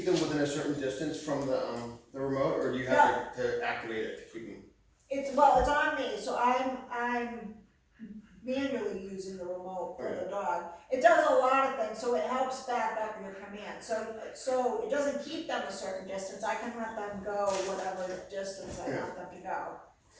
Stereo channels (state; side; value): identical; both; correlation 1.00